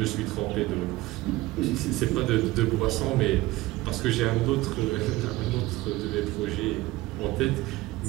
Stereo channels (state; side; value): quieter; left; 18.8 dB